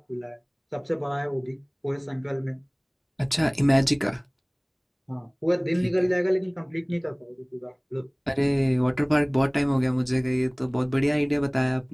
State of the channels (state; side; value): identical; both; correlation 1.00